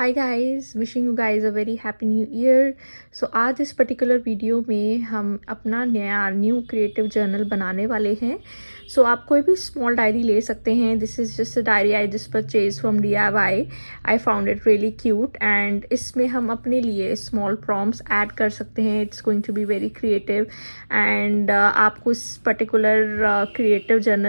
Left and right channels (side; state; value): both; inverted; correlation -1.00